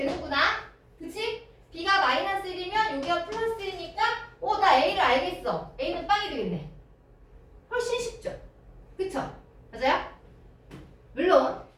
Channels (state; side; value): identical; both; correlation 1.00